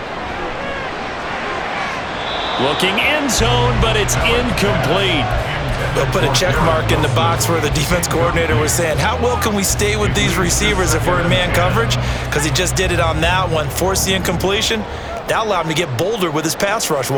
Looking end zone, but it's incomplete. They'll put a check mark in the box where the defense coordinator was saying, how well can we stay with these receivers if we're in man coverage? Because he just did it on that one. Force the incompletion. That'll allow him to get bolder with his pass rush,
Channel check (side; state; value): both; identical; correlation 1.00